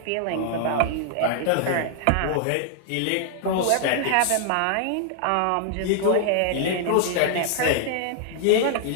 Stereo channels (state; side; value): different; both; correlation 0.00